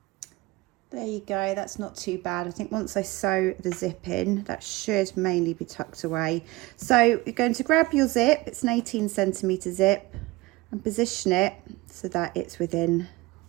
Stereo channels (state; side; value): quieter; left; 20.5 dB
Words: There you go, that's not too bad. I think once I sew the zip in, that should mainly be tucked away. So you're going to grab your zip, it's an 18cm zip, and position it so that it's within,